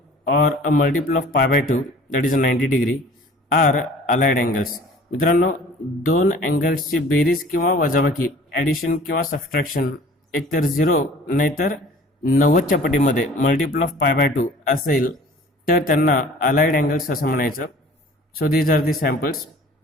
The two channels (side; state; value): both; normal; correlation 0.48